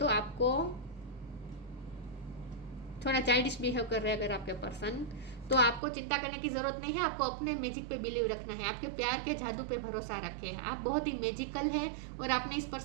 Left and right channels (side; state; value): left; drops out; at 5.8 s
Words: आपको थोड़ा चाइल्डिश बिहेव कर रहे हैं अगर आपके पर्सन, तो आपको चिंता करने की जरूरत नहीं है। आपको अपने मैजिक पे बिलीव रखना है, आपके प्यार के जादू पे भरोसा रखें। आप बहुत ही मैजिकल है, और आपने इस